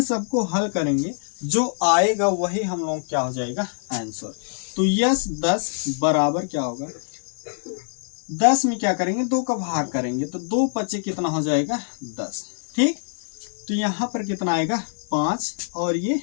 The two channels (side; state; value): right; silent; digital silence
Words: सबको हल करेंगे, जो आएगा वही हम लोग क्या हो जाएगा, आंसर। तो यस 10 बराबर क्या होगा, 10 में क्या करेंगे, 2 का भाग करेंगे, तो 2 बचे कितना हो जाएगा, 10। ठीक, तो यहाँ पर कितना आएगा, 5 और ये